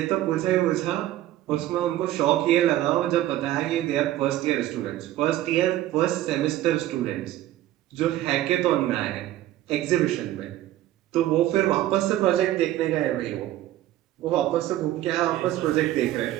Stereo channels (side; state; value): left; quieter; 14.2 dB